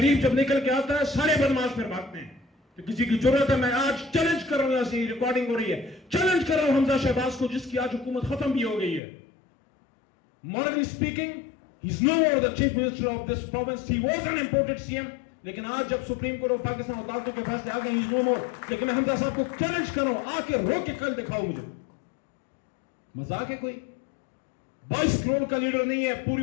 جب نکل کے آتا ہے سارے بدماش پھر بھاگتے ہیں. تو کسی کی ضرورت ہے. میں آج چیلنج کر رہا ہوں، ایسی ریکارڈنگ ہو رہی ہے، چیلنج کر رہا ہوں حمزہ شہباز کو جس کی آج حکومت ختم بھی ہو گئی ہے. Morally speaking, he's no more the chief minister of this province. He was an imported CM. لیکن آج جب سپریم کورٹ آف پاکستان عدالتوں کے فیصلے آ گئے he's no more. لیکن میں حمزہ صاحب کو چیلنج کر رہا ہوں، آ کے رو کے کل دکھاؤ مجھے. مذاق ہے کوئی؟ 22 کروڑ کا لیڈر نہیں ہے،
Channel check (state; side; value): drops out; right; at 9.0 s